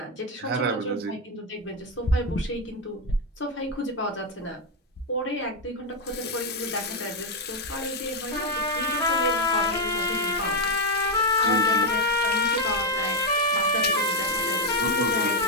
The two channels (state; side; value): normal; both; correlation 0.02